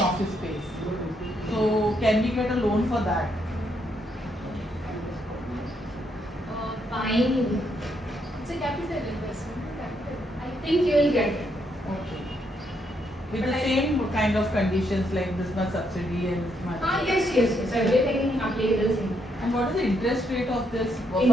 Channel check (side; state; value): both; normal; correlation 0.76